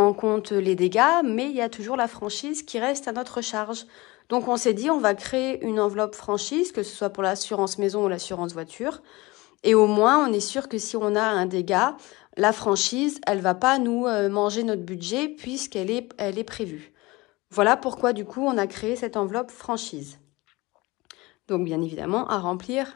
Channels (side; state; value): right; quieter; 22.1 dB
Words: en compte les dégâts, mais il y a toujours la franchise qui reste à notre charge. Donc on s'est dit, on va créer une enveloppe franchise, que ce soit pour l'assurance maison ou l'assurance voiture. Et au moins, on est sûr que si on a un dégât, la franchise, elle va pas nous manger notre budget puisqu'elle est prévue. Voilà pourquoi, du coup, on a créé cette enveloppe franchise. Donc, bien évidemment, à